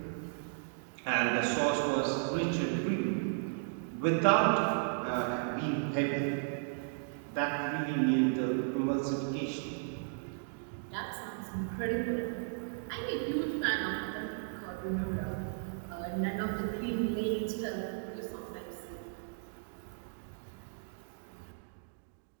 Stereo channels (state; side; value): silent; left; digital silence